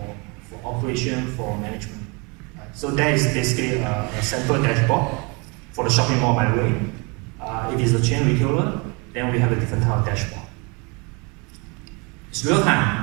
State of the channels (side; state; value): left; quieter; 30.3 dB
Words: operation, for management. Right? So that is basically a central dashboard for the shopping mall, by the way. If it's a chain retailer, then we have a different type of dashboard. It's real